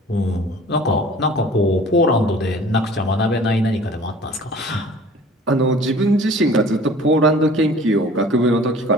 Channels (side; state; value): both; normal; correlation 0.47